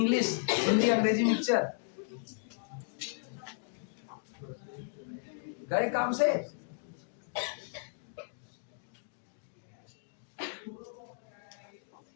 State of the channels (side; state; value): right; silent; digital silence